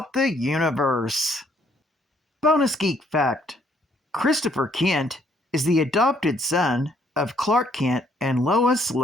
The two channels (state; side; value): normal; both; correlation 0.67